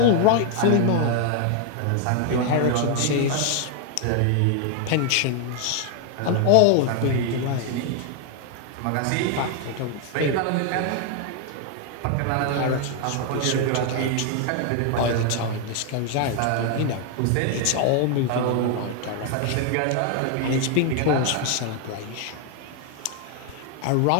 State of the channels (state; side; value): different; both; correlation 0.00